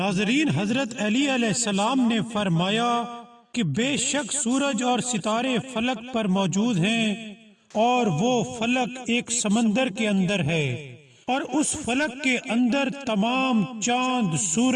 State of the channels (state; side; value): identical; both; correlation 1.00